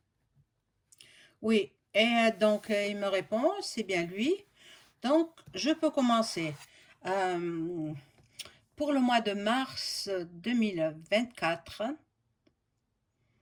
Oui, Et donc, il me répond, c'est bien lui. Donc, je peux commencer. Euh, pour le mois de mars 2024,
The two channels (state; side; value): identical; both; correlation 1.00